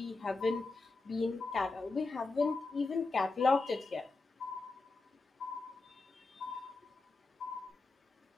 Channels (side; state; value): right; quieter; 3.5 dB